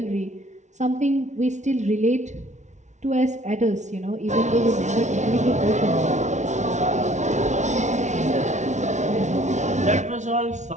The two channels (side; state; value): left; late; 0.34 ms